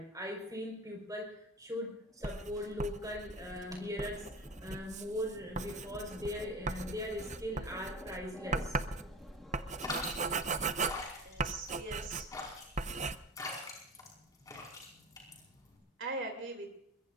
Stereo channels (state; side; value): normal; both; correlation 0.32